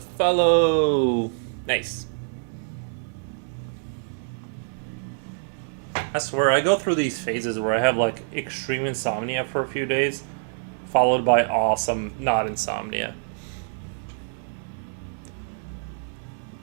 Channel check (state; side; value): silent; left; digital silence